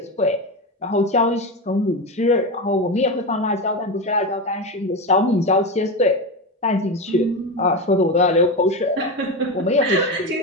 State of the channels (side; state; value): both; normal; correlation 0.18